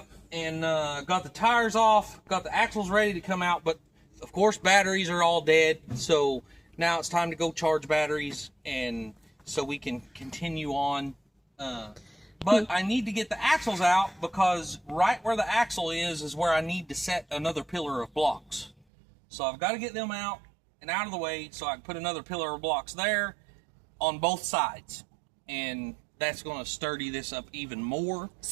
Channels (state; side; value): drops out; left; at 18.8 s